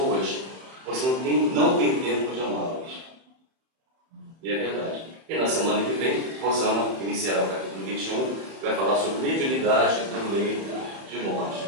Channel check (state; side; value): late; left; 31 ms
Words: você não tem tempo de amá-las. E é verdade. E na semana que vem, Rosana iniciará o capítulo 21, que vai falar sobre mediunidade do leito de morte.